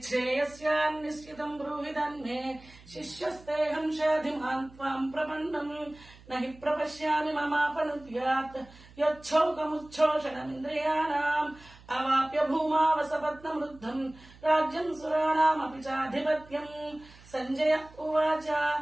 బ్రూహి తన్మే శిష్యస్తేహం షాధిమాన్ త్వాం ప్రపన్నం నహి ప్రపశ్యామి మమాపనుద్యాత్ యచ్చౌకముచ్ఛోషణమింద్రియాణాం అవాప్య భూమావసపత్నమృద్ధం రాజ్యం సురాణామపి చాధిపత్యం. సంజయ ఉవాచ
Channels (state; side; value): noise; right; hum, 23 dB below the sound